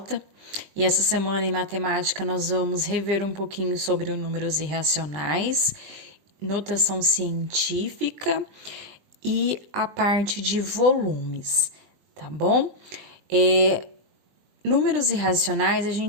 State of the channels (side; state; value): left; late; 20 ms